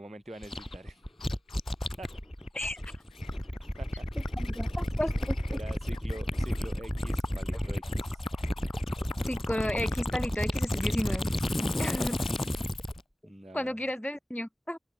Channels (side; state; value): both; normal; correlation 0.96